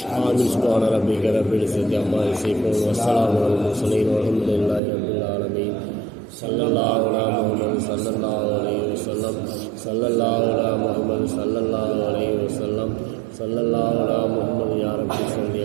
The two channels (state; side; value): drops out; left; at 4.8 s